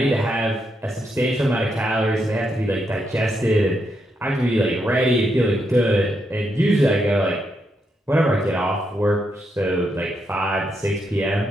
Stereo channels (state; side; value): normal; both; correlation 0.81